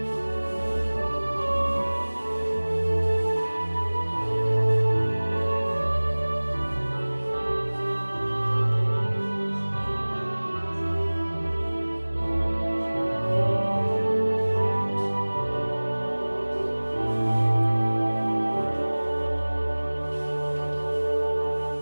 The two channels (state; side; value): inverted; both; correlation -1.00